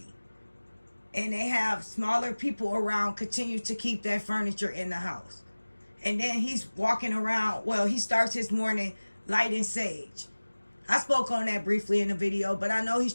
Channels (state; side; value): inverted; both; correlation -1.00